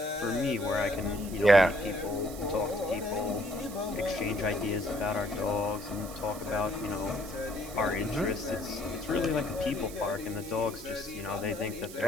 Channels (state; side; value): noise; right; hiss, 14 dB below the sound